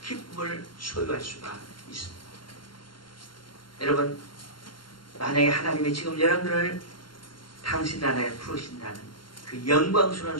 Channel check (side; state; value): right; late; 0.72 ms